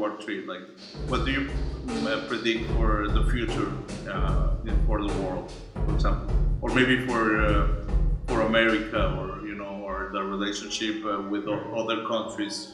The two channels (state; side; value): identical; both; correlation 1.00